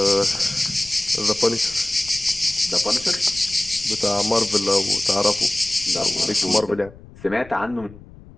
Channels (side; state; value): left; noise; rumble, 20 dB below the sound